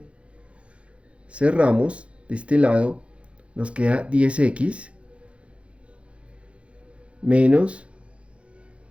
cerramos de este lado, nos queda 10x menos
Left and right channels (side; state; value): left; late; 0.061 ms